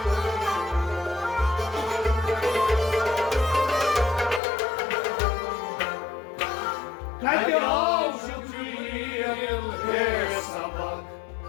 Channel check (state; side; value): drops out; right; at 4.4 s